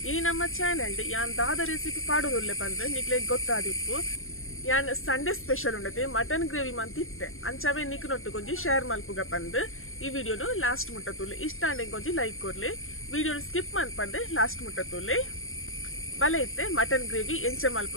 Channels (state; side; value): late; right; 0.60 ms